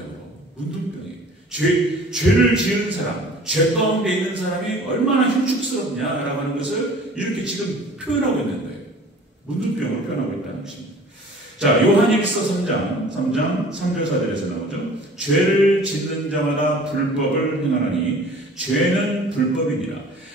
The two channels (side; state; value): both; normal; correlation 0.47